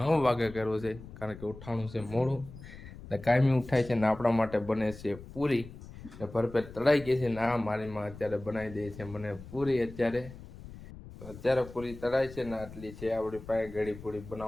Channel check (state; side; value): noise; left; rumble, 15 dB below the sound